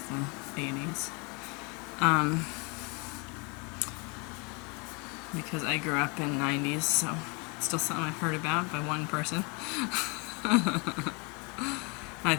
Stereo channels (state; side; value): quieter; right; 31.4 dB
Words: the 80s. Because I grew up in 90s, so it's still something I've heard about by one person. I